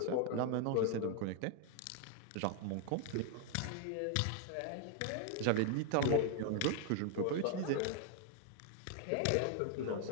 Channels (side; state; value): both; different; correlation 0.00